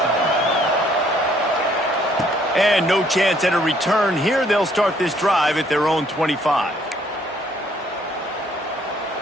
And no chance at a return here. They'll start this drive at their own 25.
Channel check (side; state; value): both; normal; correlation 0.64